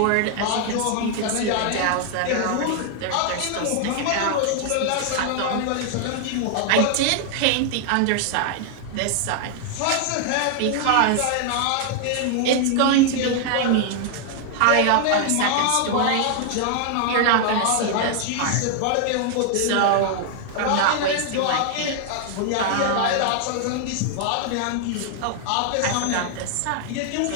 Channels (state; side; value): different; both; correlation 0.00